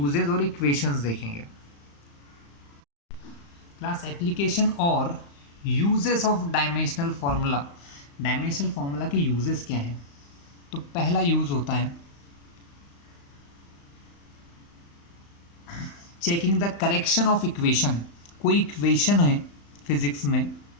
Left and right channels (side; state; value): right; late; 35 ms